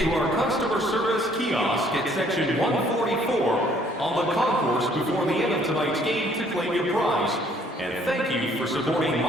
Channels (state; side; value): normal; both; correlation 0.62